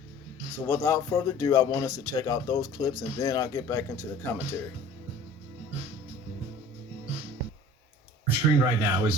So without further ado, I want us to check out those clips, and then I'll get back into the commentary. On screen right now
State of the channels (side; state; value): both; normal; correlation 0.46